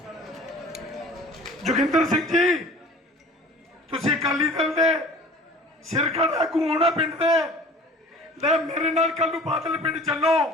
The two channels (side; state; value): both; normal; correlation 0.45